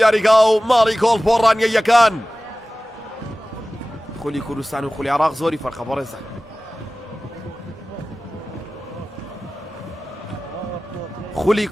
یاریگا و ماڵی گۆڵ بۆ ڕانیە یەکان خولی کوردستان و خولی عێراق زۆری فەرقە بۆ ڕێزان خولی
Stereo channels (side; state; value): both; normal; correlation 0.97